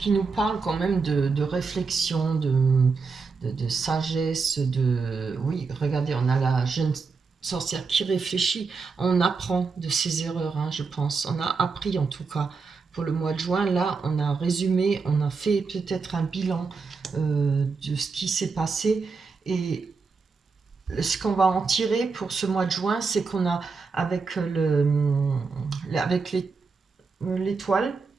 nous parle quand même de réflexion, de sagesse, Oui, regardez, on a la jeune sorcière qui réfléchit, on apprend de ses erreurs, je pense. On a appris en tout cas. Pour le mois de juin, là, on a résumé, on a fait peut-être un bilan de ce qui s'est passé. Et ce qu'on va en tirer pour ce mois de juin, c'est qu'on a, avec l'étoile,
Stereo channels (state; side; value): quieter; left; 4.8 dB